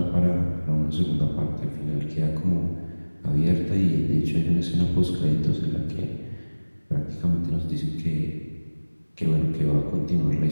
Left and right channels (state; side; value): inverted; both; correlation -1.00